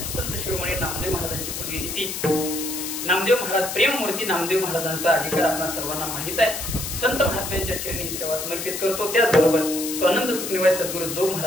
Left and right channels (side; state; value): left; noise; hiss, 5 dB below the sound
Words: संत शिरोमणी नामदेव महाराजांची पुण्यतिथी, नामदेव महाराज प्रेममूर्ती नामदेव महाराजांचा अधिकार आपल्या सर्वांना माहित आहे. संत महात्म्यांच्या चरणी सेवा समर्पित करतो. त्याचबरोबर स्वानंद सुखनिवाय सद्गुरू जो